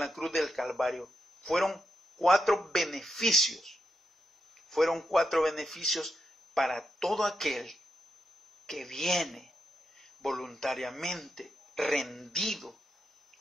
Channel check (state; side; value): normal; both; correlation 0.84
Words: cruz del Calvario. Fueron 4 beneficios. Fueron 4 beneficios para todo aquel que viene voluntariamente, rendido,